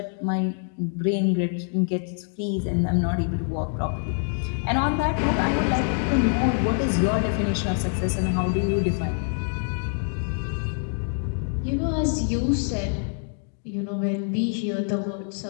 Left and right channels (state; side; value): silent; right; 56 dB below the other